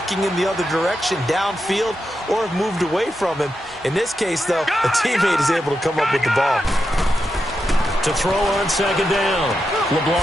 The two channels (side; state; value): both; normal; correlation 0.87